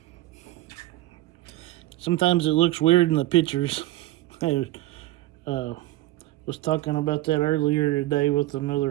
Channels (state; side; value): quieter; left; 17.1 dB